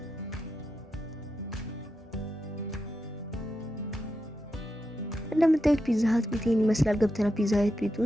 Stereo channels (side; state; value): both; normal; correlation 0.87